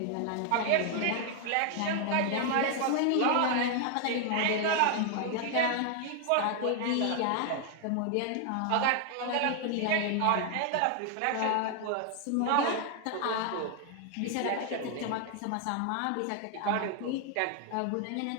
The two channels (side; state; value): both; different; correlation 0.00